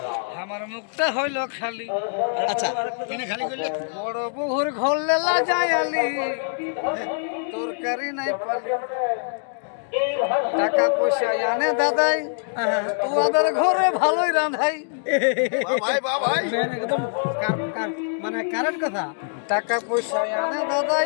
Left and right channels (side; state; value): right; silent; digital silence